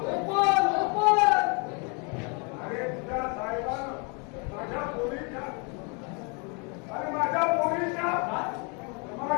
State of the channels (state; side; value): quieter; right; 34.3 dB